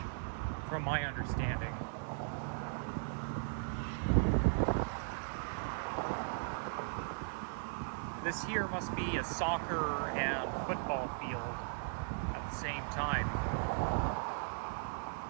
from my understanding. This here must be a soccer and football field at the same time.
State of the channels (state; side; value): silent; left; 53 dB below the other